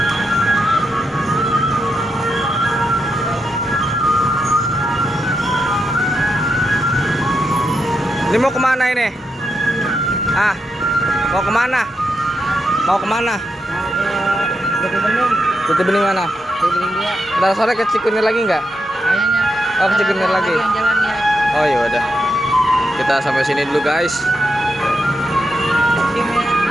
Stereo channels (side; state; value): both; normal; correlation 0.84